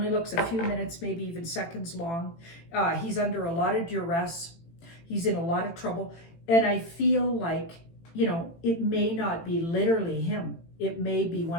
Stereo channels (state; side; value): late; right; 18 ms